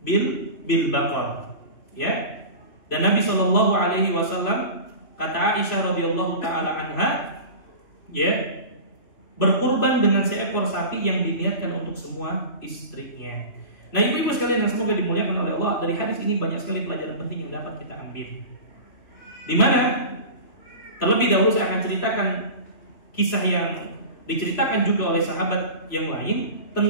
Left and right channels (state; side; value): late; right; 3.0 ms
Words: baqar, ya. Dan Nabi sallallahu alaihi wasallam, kata Aisyah radhiyallahu taala anha, ya, berkurban dengan seekor sapi yang diniatkan untuk semua istrinya. Nah, ibu-ibu sekalian yang semoga dimuliakan oleh Allah, dari hadis ini banyak sekali pelajaran penting yang dapat kita ambil. Di mana terlebih dahulu saya akan ceritakan kisah yang diceritakan juga oleh sahabat yang lain